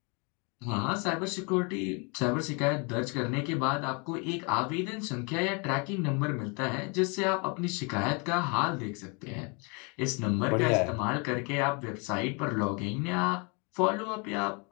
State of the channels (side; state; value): right; quieter; 32.7 dB